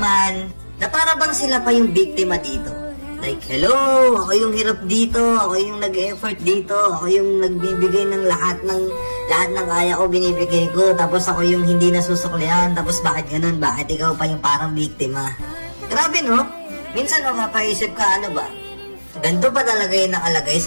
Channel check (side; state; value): both; inverted; correlation -1.00